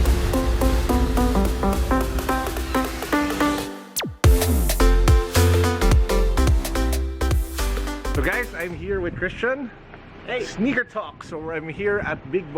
So guys, I'm here with Christian. Hey. Sneakertalk. So I'm here at Big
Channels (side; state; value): both; identical; correlation 1.00